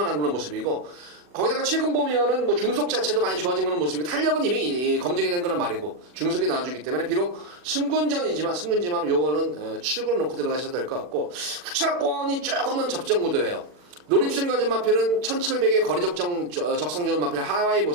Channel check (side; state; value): left; late; 40 ms